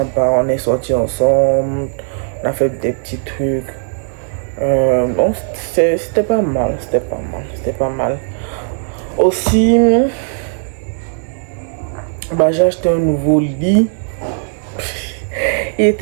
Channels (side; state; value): left; silent; 62 dB below the other